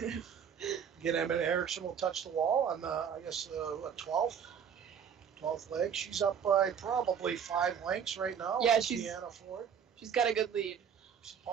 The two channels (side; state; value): left; quieter; 7.7 dB